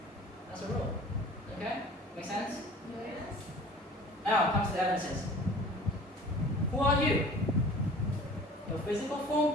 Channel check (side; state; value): both; normal; correlation 0.45